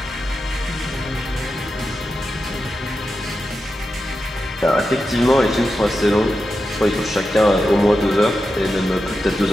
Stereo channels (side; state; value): both; normal; correlation 0.90